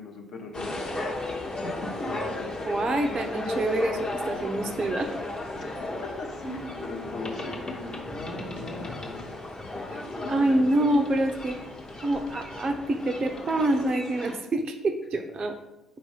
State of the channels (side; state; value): both; normal; correlation 0.79